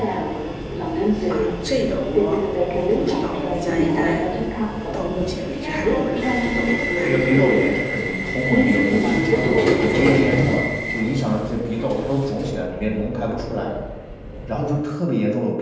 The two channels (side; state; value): both; identical; correlation 1.00